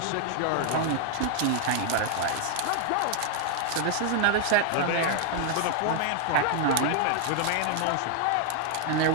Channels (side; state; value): both; different; correlation 0.00